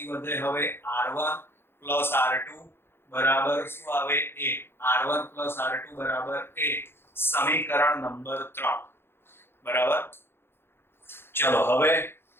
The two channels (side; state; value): right; late; 0.11 ms